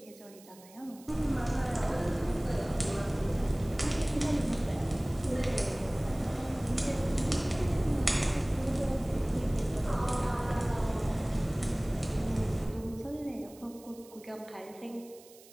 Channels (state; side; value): noise; right; hiss, 23 dB below the sound